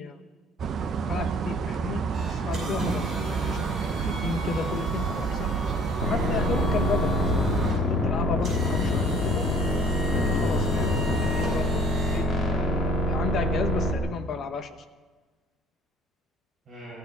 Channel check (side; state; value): both; normal; correlation 0.54